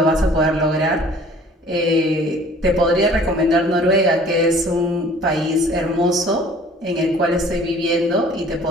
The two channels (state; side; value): normal; both; correlation 0.51